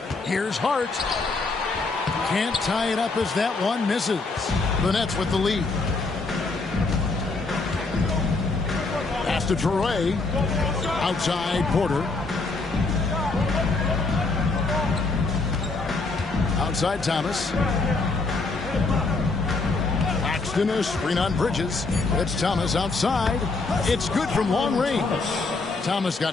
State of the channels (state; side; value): quieter; right; 3.7 dB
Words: Here's Hart. Can't tie it up as that one misses. The Nets with the lead. Pass to Traoré. Outside Porter. Outside Thomas. Claxton a screen on Bridges. It's Thomas outside. It's good from long range. Thomas